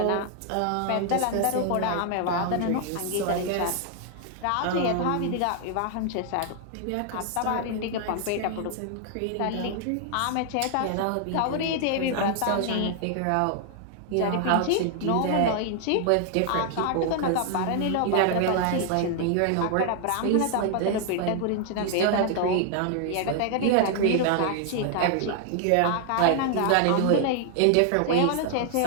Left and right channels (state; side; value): different; both; correlation 0.00